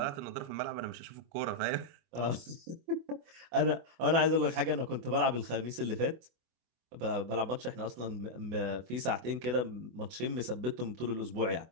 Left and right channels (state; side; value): late; left; 24 ms